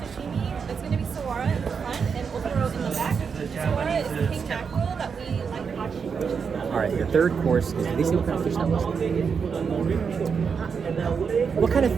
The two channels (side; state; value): left; quieter; 6.1 dB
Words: It's going to be sawara in the front and otoro in the back. Sawara is king mackerel that we like watching. All right, your third course is, did they say what kind of fish that was? What kind of